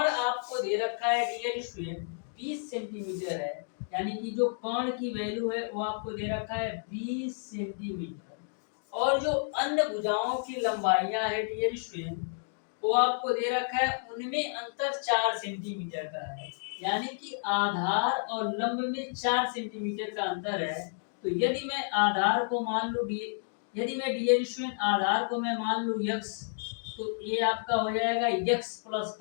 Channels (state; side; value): silent; right; digital silence